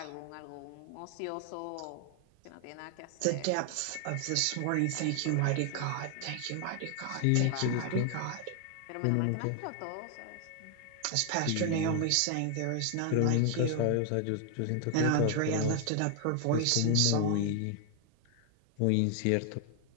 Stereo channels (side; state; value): both; different; correlation 0.01